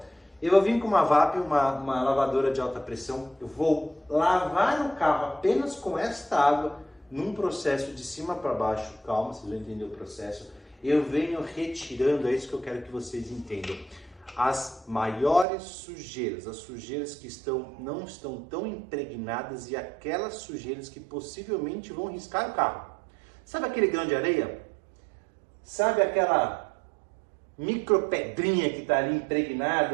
Eu vou vir com uma VAP, uma lavadora de alta pressão, eu vou lavar o carro apenas com esta água, num processo de cima para baixo, calma, vocês vão entender o processo. Eu venho retirando, é isso que eu quero que vocês entendam, as maiores sujeiras, as sujeiras que não estão tão impregnadas e aquelas sujeiras que possivelmente vão riscar o carro. Sabe aquele grão de areia? Sabe aquela micropedrinha que está ali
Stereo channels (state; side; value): drops out; left; at 15.5 s